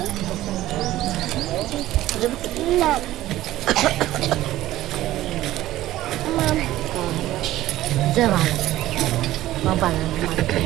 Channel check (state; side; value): quieter; left; 15.1 dB